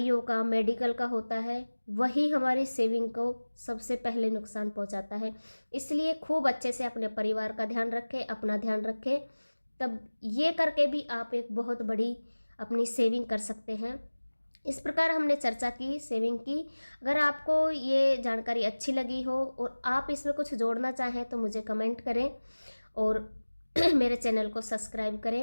का, मेडिकल का होता है, वही हमारी सेविंग को सबसे पहले नुकसान पहुंचाता है। इसलिए खूब अच्छे से अपने परिवार का ध्यान रखें, अपना ध्यान रखें, तब ये करके भी आप एक बहुत बड़ी अपनी सेविंग कर सकते हैं। इस प्रकार हमने चर्चा की, सेविंग की। अगर आपको ये जानकारी अच्छी लगी हो और आप इसमें कुछ जोड़ना चाहें तो मुझे कमेंट करें और मेरे चैनल को सब्सक्राइब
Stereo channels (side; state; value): both; inverted; correlation -1.00